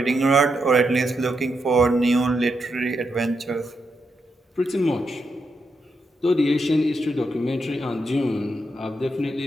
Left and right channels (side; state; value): both; normal; correlation 0.82